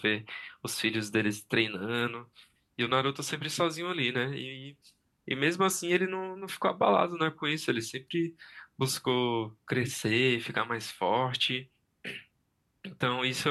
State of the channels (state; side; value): identical; both; correlation 1.00